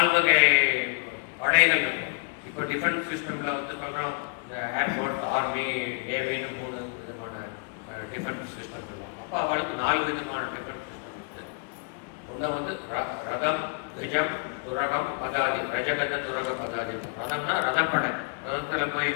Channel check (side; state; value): right; quieter; 36.3 dB